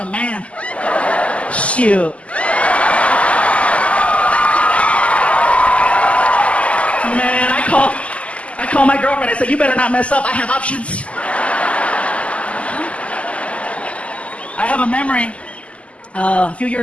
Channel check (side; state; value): right; late; 0.062 ms